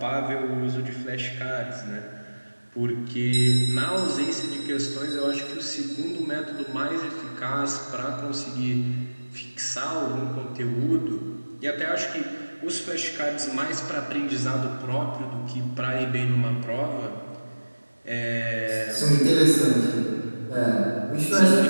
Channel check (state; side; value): inverted; both; correlation -1.00